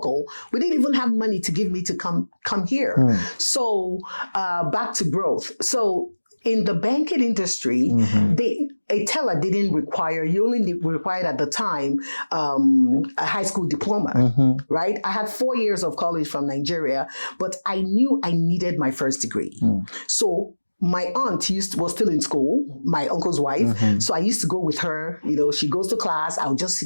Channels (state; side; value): inverted; both; correlation -1.00